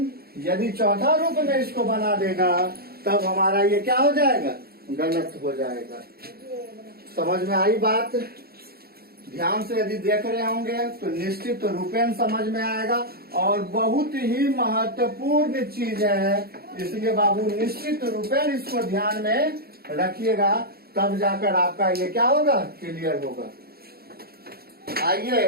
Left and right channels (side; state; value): left; late; 0.45 ms